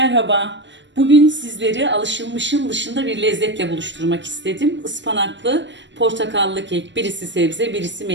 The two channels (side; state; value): left; late; 0.53 ms